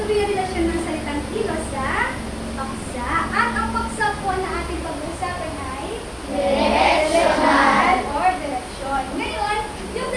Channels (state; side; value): identical; both; correlation 1.00